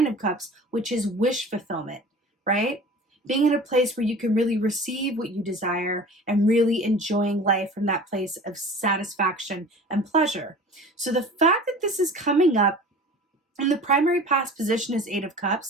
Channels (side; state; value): both; normal; correlation 0.41